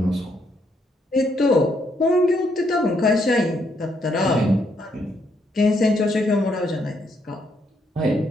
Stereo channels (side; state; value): both; normal; correlation 0.74